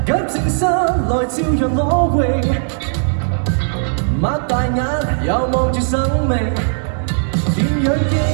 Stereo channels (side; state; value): left; silent; digital silence